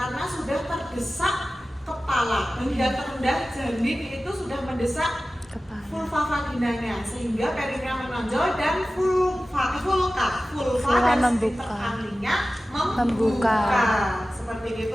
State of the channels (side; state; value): both; normal; correlation 0.96